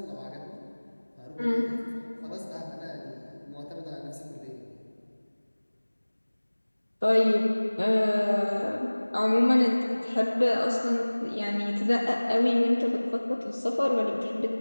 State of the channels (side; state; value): both; inverted; correlation -1.00